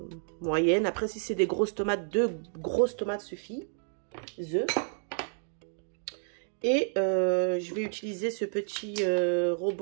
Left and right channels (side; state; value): left; silent; 58 dB below the other